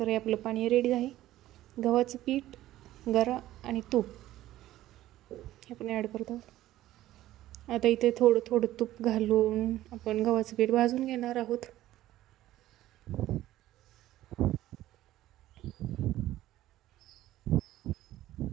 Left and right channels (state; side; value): quieter; left; 14.6 dB